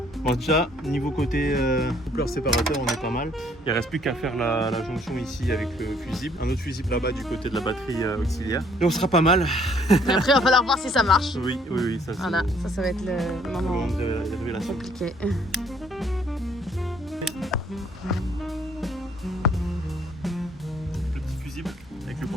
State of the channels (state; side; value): normal; both; correlation 0.63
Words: Bon, déjà, niveau côté coupleur séparateur, on est pas mal. Il reste plus qu'à faire la jonction ici avec le fusible. Un autre fusible là-bas du côté de la batterie auxiliaire. Et on sera pas mal. Mais après, il va falloir voir si ça marche. Oui, ça c'est Voilà, ça va être le le moment moment de la révélation. compliqué. Le petit fusible avec le